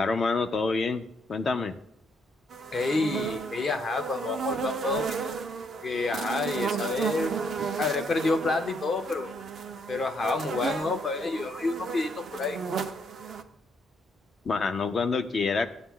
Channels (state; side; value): normal; both; correlation 0.72